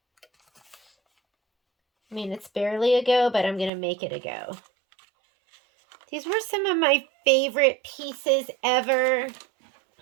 I mean, it's barely a go, but I'm going to make it a go. These were some of my favorite pieces ever.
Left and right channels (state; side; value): drops out; left; at 3.7 s